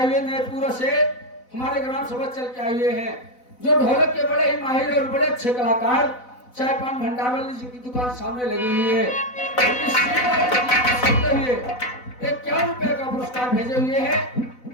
हुए नैपुरा से हमारे ग्राम सभा चल के आए हुए हैं, जो ढोलक के बड़े ही माहिर और बड़े अच्छे कलाकार चाय पान भंडार वाले जिनकी दुकान सामने लगी हुई है, एक 1 रुपए का पुरस्कार भेजे हुए हैं।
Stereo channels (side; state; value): right; late; 4.0 ms